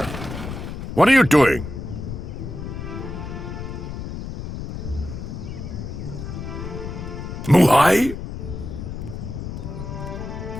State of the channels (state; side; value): noise; left; rumble, 7 dB below the sound